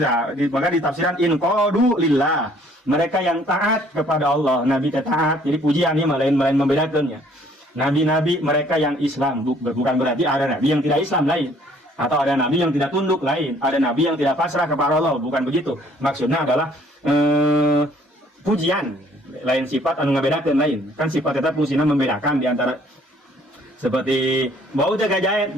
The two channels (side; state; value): both; normal; correlation 0.60